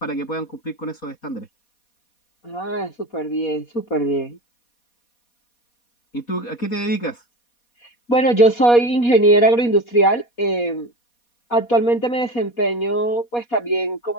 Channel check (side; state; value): right; late; 4.2 ms